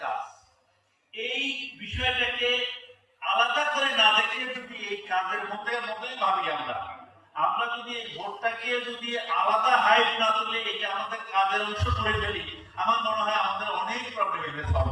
কাজ। এই বিষয়টাকে আলাদা করে না দেখে যদি এই কাজের মধ্যেই ভাবি আমরা যদি এই ভোটটাকে যদি আলাদা হাইট না তুলে এটা আমাদের কাজের অংশ করে ফেলি, আমার মনে হয় আমাদের অনেক প্রবলেম এখানে সলভ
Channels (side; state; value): both; identical; correlation 1.00